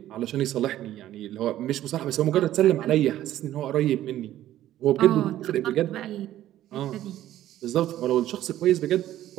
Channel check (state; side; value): quieter; left; 13.2 dB